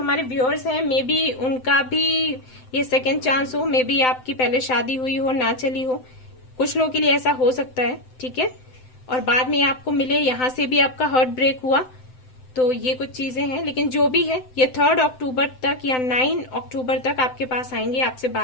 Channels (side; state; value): right; late; 7.8 ms